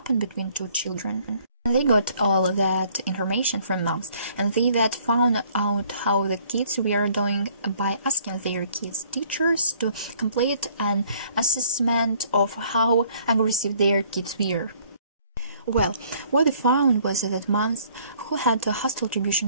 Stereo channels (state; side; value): inverted; both; correlation -0.60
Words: between two children. They got all that information from moms, and they that found out how the kids were doing by asking their kids' teachers to complete an assessment of how aggressive their kids were. Well, what they found was that moms who had hostile